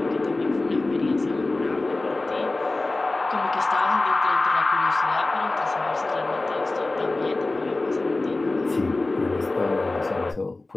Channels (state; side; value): quieter; right; 3.1 dB